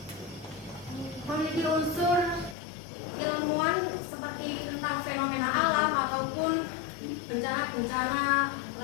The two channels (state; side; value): drops out; right; at 2.6 s